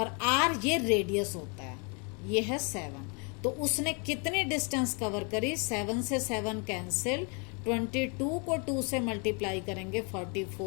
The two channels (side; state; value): right; quieter; 35.2 dB